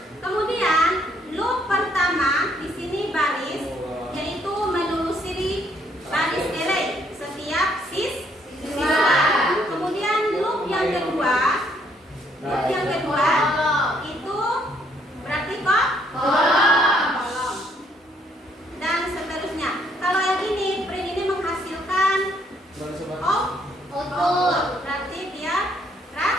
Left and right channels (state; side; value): normal; both; correlation 0.68